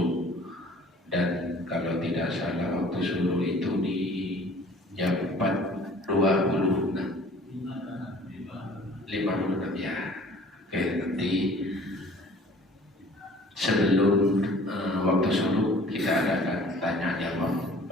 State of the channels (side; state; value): both; normal; correlation 0.50